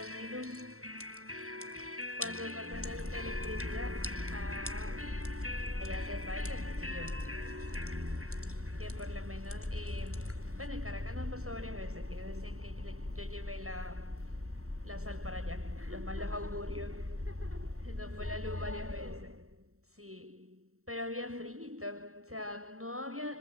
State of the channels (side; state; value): left; late; 0.63 ms